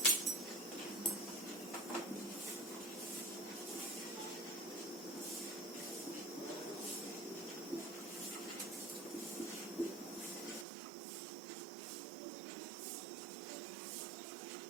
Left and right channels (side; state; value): left; drops out; at 10.7 s